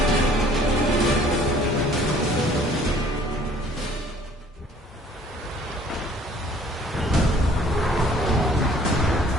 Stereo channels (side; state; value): both; normal; correlation 0.56